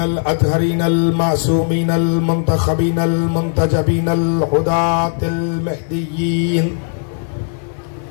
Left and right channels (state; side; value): silent; right; 66 dB below the other